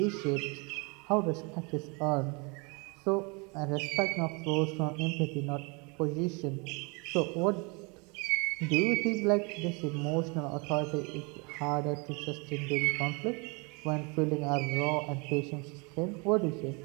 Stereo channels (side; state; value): left; quieter; 30.8 dB